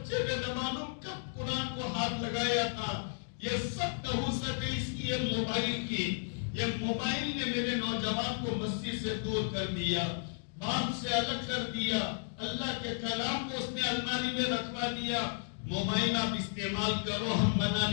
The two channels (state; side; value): silent; right; digital silence